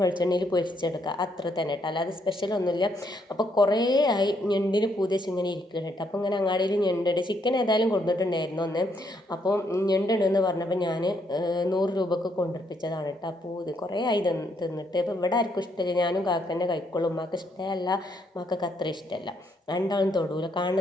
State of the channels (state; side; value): normal; both; correlation 0.73